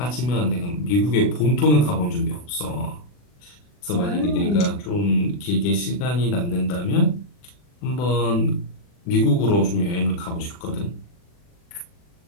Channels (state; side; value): late; right; 40 ms